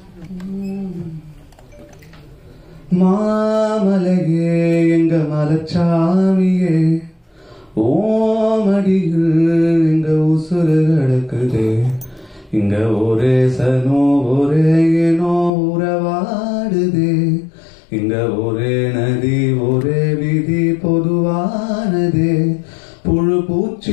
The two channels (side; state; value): right; drops out; at 15.5 s